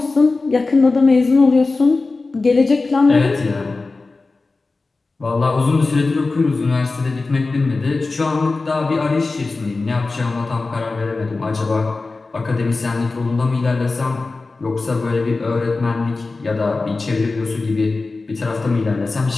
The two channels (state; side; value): quieter; right; 3.7 dB